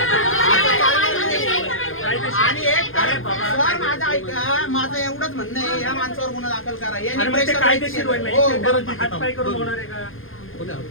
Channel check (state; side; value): late; right; 0.59 ms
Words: आणि एक सर माझं ऐका माझं एवढंच म्हणणं आहे या माणसावर गुन्हा दाखल करा यांनी प्रेशर कायदेशीर हो हात पाय करून होणार आहे का